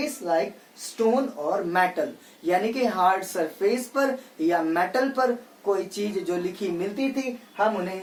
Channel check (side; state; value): both; identical; correlation 1.00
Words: like stone और मेटल, यानी कि हार्ड सरफेस पर या मेटल पर कोई चीज जो लिखी मिलती थी हम उन्हें